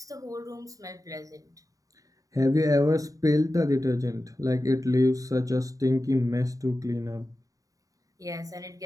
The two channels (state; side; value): late; left; 0.16 ms